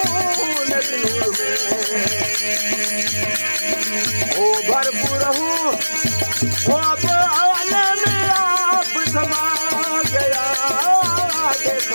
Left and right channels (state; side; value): inverted; both; correlation -1.00